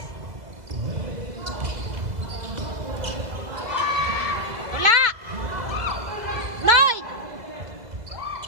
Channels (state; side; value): late; left; 2.0 ms